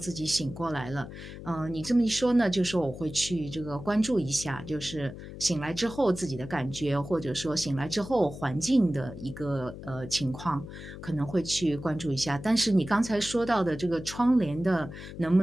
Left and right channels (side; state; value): left; noise; hum, 12 dB below the sound